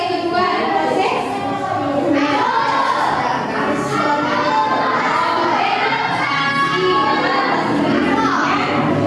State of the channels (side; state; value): both; identical; correlation 1.00